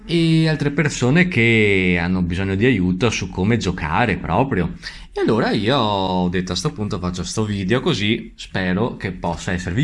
e altre persone che hanno bisogno di aiuto su come giocare proprio. E allora io ho detto a sto punto faccio sto video così spero che possa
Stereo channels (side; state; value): both; identical; correlation 1.00